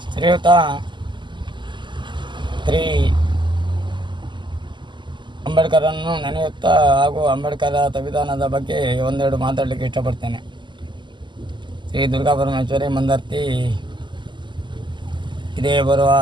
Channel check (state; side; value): late; left; 0.22 ms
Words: ಶ್ರೀಯುತ ಶ್ರೀ ಅಂಬೇಡ್ಕರನ್ನು ನೆನೆಯುತ್ತಾ ಹಾಗೂ ಅಂಬೇಡ್ಕರ ಸಂವಿಧಾನದ ಬಗ್ಗೆ ಒಂದೆರಡು ಮಾತಾಡಲಿಕ್ಕೆ ಇಷ್ಟಪಡ್ತೇನೆ. ಶ್ರೀ ದುರ್ಗಾ ಪರಮೇಶ್ವರಿ ಮಂದರ್ತಿ ಇದೇ ಬರುವ